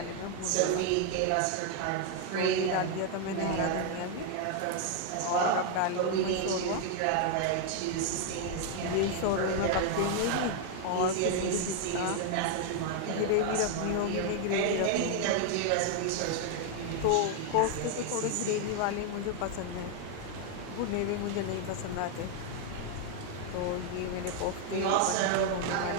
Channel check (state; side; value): different; both; correlation 0.01